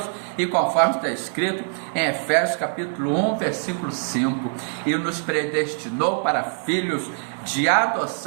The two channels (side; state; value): left; silent; digital silence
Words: E conforme está escrito em Efésios capítulo 1, versículo 5, e nos predestinou para filhos de